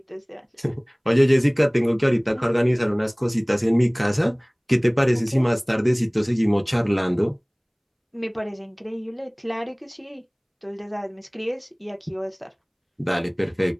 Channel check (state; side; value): identical; both; correlation 1.00